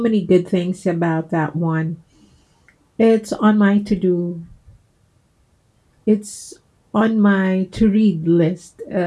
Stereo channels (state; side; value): identical; both; correlation 1.00